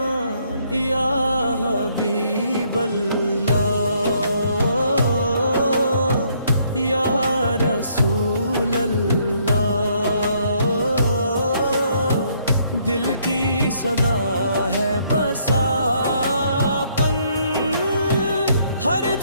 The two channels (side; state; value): both; inverted; correlation -0.68